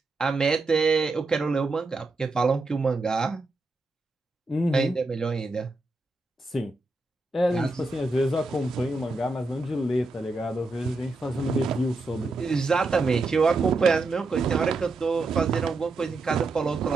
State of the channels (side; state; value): left; quieter; 3.3 dB